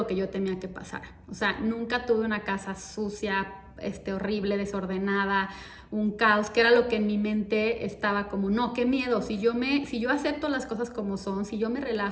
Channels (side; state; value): both; identical; correlation 1.00